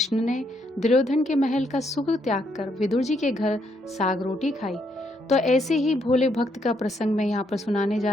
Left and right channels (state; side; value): normal; both; correlation 0.74